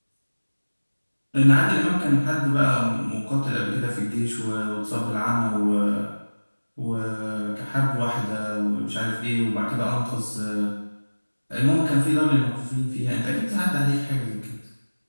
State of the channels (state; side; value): inverted; both; correlation -1.00